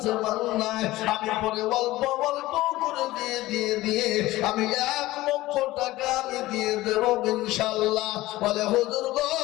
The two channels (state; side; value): quieter; right; 17.6 dB